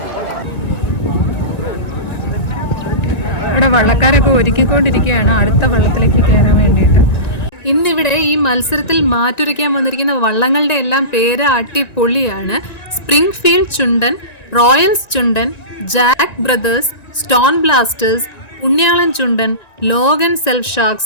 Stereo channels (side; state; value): right; late; 1.9 ms